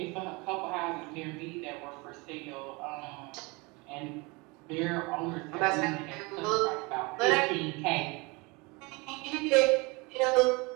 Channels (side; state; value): left; quieter; 26.6 dB